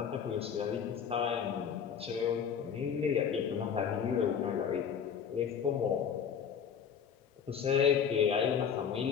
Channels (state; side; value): quieter; right; 7.5 dB